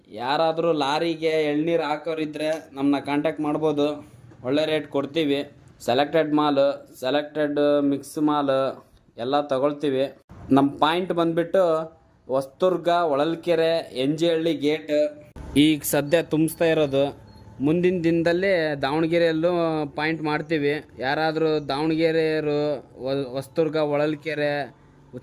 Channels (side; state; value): both; identical; correlation 1.00